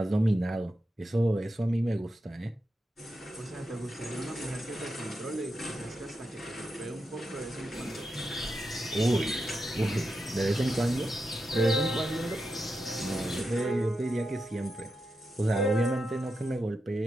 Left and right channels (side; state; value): both; normal; correlation 0.88